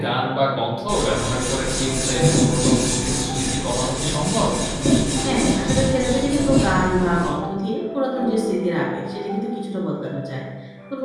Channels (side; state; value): both; identical; correlation 1.00